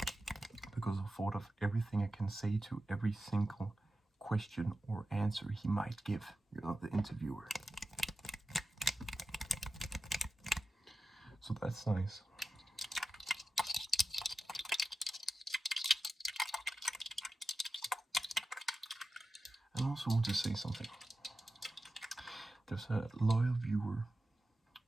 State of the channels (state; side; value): normal; both; correlation 0.92